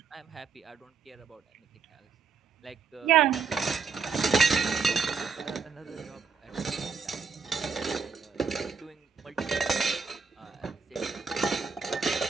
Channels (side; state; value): left; quieter; 5.5 dB